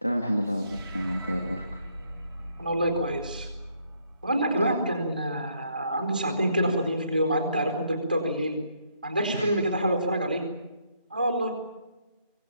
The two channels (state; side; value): inverted; both; correlation -0.70